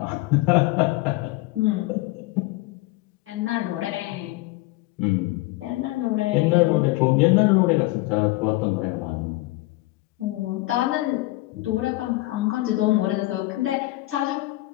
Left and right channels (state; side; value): quieter; right; 19.8 dB